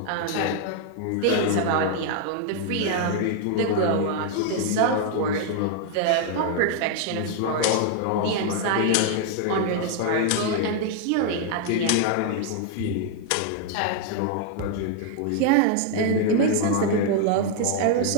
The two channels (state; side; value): different; both; correlation 0.00